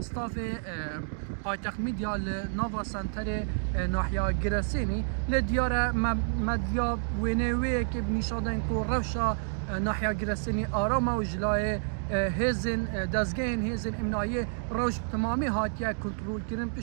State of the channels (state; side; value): silent; left; digital silence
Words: پایتخت میدیا لناوا سنتر ناحیه گرسینی لدیاره مدیا وینوی که بنیشادن کو روشا ناحیه گرسینی آرام و جلای هزن دزگین هزن امنایی روش تمامی هاتیه کنترل کردن